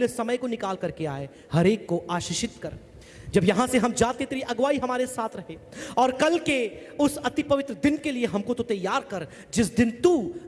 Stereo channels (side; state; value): both; identical; correlation 1.00